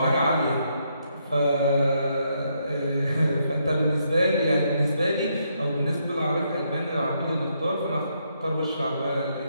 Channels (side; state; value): both; inverted; correlation -0.76